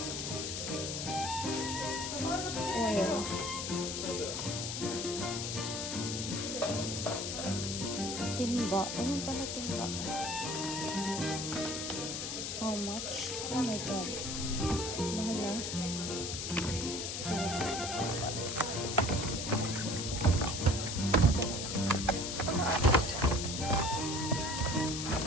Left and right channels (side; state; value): left; noise; hiss, 3 dB below the sound